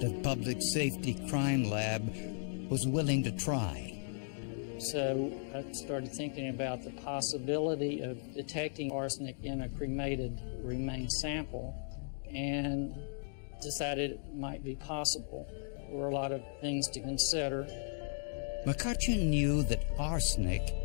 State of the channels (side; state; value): right; silent; digital silence